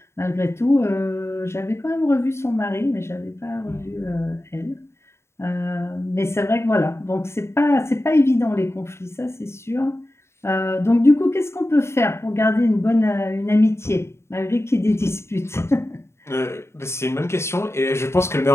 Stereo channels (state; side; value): late; right; 0.13 ms